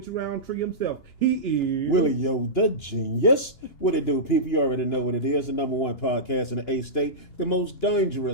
Roundtree himself. He is Willie Yo, the genius. What it do, people? You already know what it is. The number one podcast in the A state, the most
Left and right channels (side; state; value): right; late; 2.9 ms